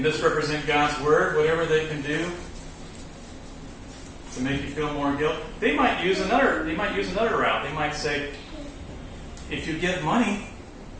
God's word, whatever they can do to make you feel more guilt. They might use another route. They might say, if you give money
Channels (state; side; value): identical; both; correlation 1.00